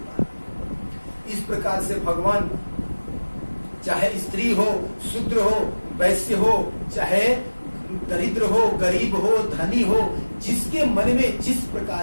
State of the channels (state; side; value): inverted; both; correlation -1.00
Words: दिया। इस प्रकार से भगवान चाहे स्त्री हो, शूद्र हो, वैश्य हो, चाहे दरिद्र हो, गरीब हो, धनी हो, जिसके मन में जिस